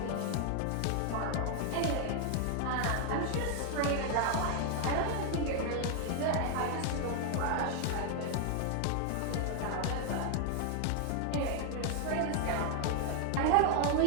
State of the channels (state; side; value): different; both; correlation 0.00